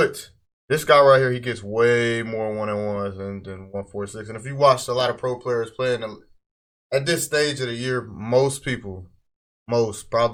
this guy right here, he gets way more one-on-ones than 146. And if you watch a lot of pro players playing at this stage of the year, most people,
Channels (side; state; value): both; identical; correlation 1.00